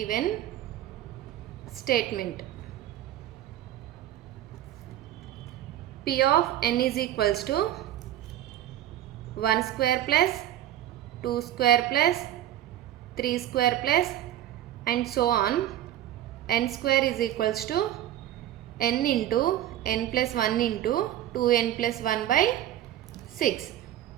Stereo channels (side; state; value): left; quieter; 12.4 dB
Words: P of n is equals to 1 square plus 2 square plus 3 square plus and so on. N square is equals to n into n plus 1 into 2n plus 1 by 6.